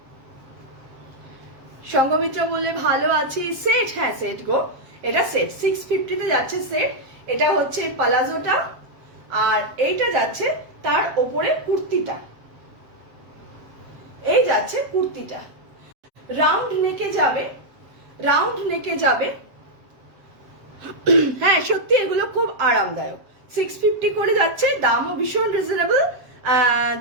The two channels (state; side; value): late; left; 7.5 ms